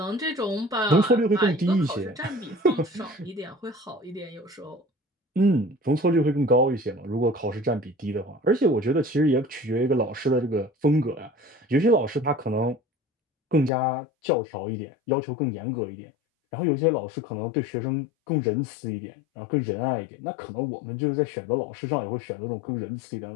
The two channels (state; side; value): drops out; right; at 13.7 s